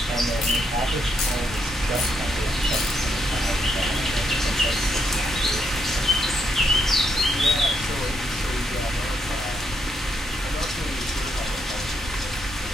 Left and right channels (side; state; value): both; normal; correlation 0.77